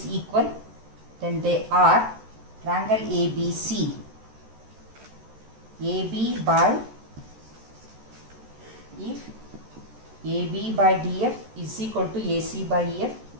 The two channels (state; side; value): late; left; 13 ms